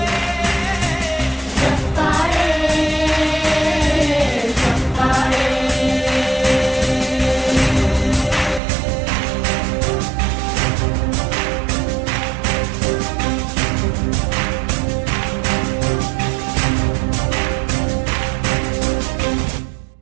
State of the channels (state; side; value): drops out; left; at 8.6 s